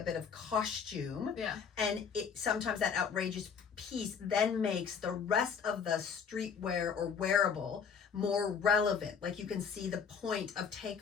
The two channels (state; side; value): quieter; right; 6.5 dB